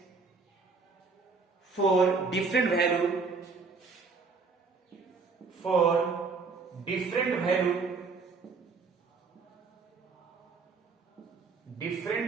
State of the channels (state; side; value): quieter; left; 4.5 dB